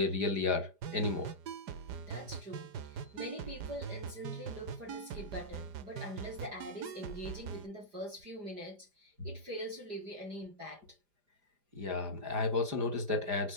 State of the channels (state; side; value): late; left; 4.9 ms